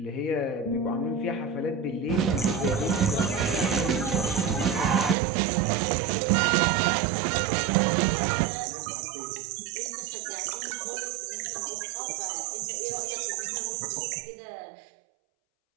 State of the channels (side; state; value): left; drops out; at 5.2 s